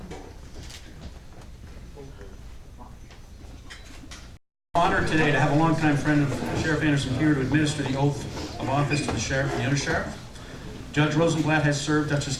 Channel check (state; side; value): identical; both; correlation 1.00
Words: Honored today to have a longtime friend of Sheriff Anderson here to administer the oath of office to the sheriff and the undersheriff. Judge Rosenblatt has served